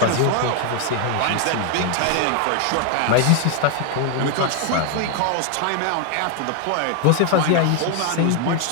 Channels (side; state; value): both; different; correlation 0.00